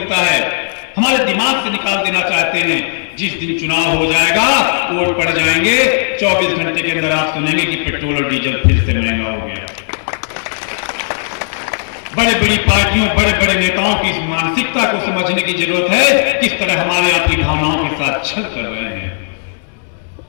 है। हमारे दिमाग से निकाल देना चाहते हैं। जिस दिन चुनाव हो जाएगा, वोट पड़ जाएंगे, 24 घंटे के अंदर आप सुनेंगे कि पेट्रोल और डीजल फिर से महंगा हो गया। बड़े बड़ी पार्टियों, बड़े बड़े नेताओं की इस मानसिकता को समझने की जरूरत है, किस तरह हमारे आपकी भावनाओं के साथ छल कर रहे हैं।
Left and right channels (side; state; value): right; silent; digital silence